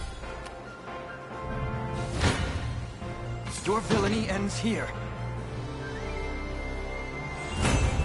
Your villainy ends here.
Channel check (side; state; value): both; identical; correlation 1.00